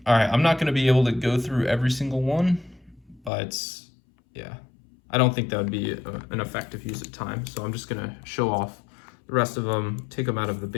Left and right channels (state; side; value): drops out; right; at 3.3 s